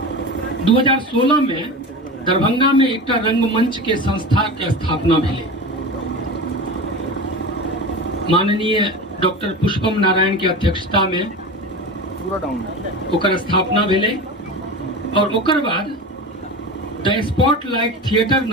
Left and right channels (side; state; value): both; normal; correlation 0.28